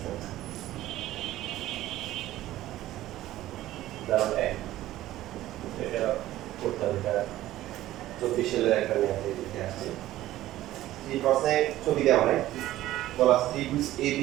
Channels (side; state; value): left; quieter; 14.8 dB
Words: উদাহরণ 1 এটা করতে হবে, এটা 24 সালের একটা ম্যাথ দিতে আসছে। এই প্রশ্নে ছবি দেওয়া হয়, বলা ত্রিভুজ